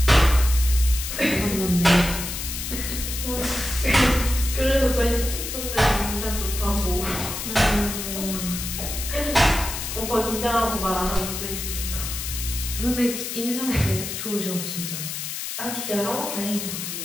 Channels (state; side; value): noise; left; hiss, 5 dB below the sound